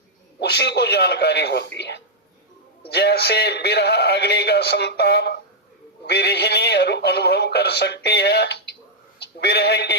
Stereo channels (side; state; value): both; normal; correlation -0.05